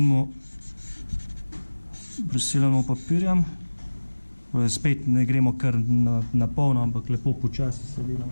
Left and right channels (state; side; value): inverted; both; correlation -1.00